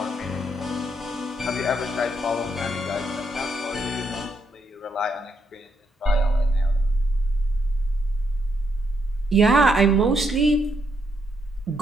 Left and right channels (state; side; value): normal; both; correlation 0.77